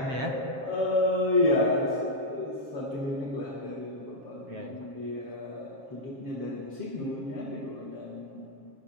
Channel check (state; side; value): late; left; 7.5 ms